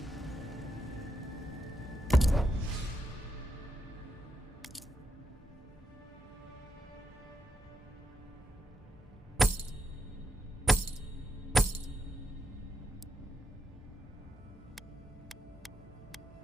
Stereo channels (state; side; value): normal; both; correlation 0.79